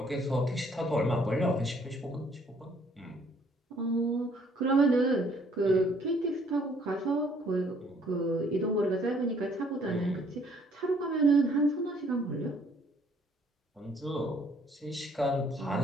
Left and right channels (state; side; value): normal; both; correlation 0.63